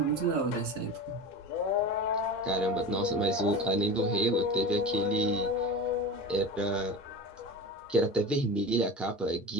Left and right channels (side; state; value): both; normal; correlation 0.30